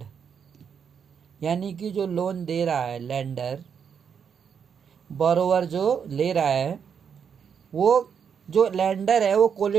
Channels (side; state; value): left; quieter; 7.1 dB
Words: यानी कि जो लोन दे रहा है लेंडर, बोरोवर जो ले रहा है, वो जो लेंडर है वो